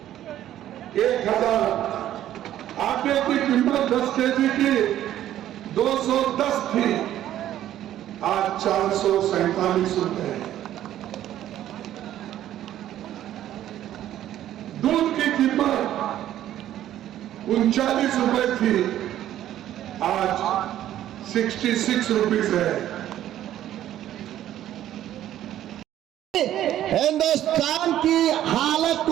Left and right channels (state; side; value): quieter; left; 12.3 dB